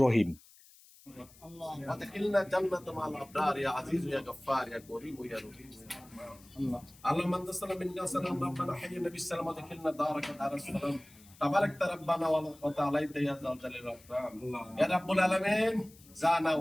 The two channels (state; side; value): noise; left; hiss, 24 dB below the sound